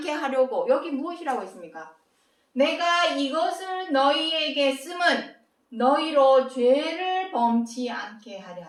하려고. 여기 무엇이라고 했습니까? 내가 이것을 너희에게 쓰면 너희로 죄를 범치 않게 하려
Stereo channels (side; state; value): both; identical; correlation 1.00